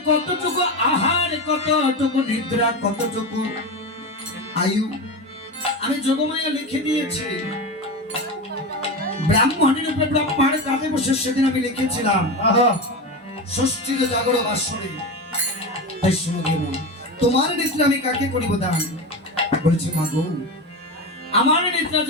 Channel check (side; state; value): both; normal; correlation 0.21